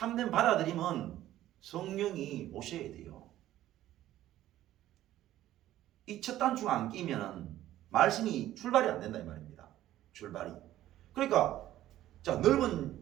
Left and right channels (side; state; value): left; quieter; 13.7 dB